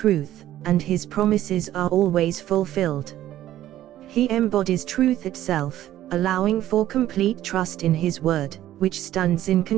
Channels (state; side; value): quieter; left; 13.3 dB